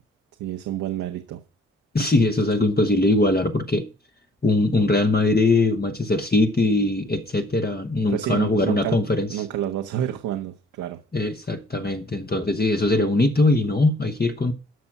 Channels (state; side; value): normal; both; correlation 0.58